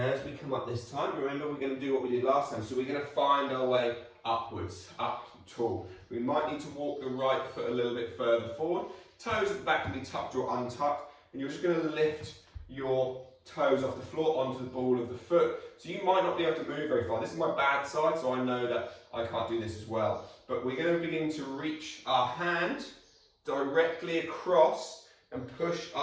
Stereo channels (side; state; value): both; identical; correlation 1.00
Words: we come up this time, remember we're going to do what we did last time. So we're going to find our way upwards, up tall. We might need to walk the right foot a little bit further forward. Toes at the back can be tucked or untucked. And you're just going to lift your toes off the floor onto the ball of the foot. So you might not be able to move very far. This is my bad side, so I know that I can't do this as well. But we're going to begin to reach our hand directly across and push